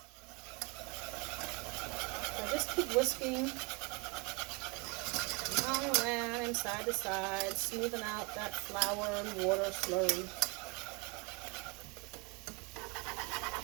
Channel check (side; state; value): left; quieter; 29.8 dB